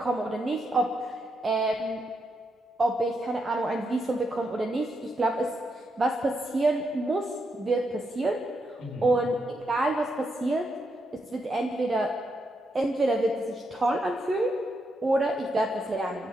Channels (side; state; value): both; normal; correlation 0.81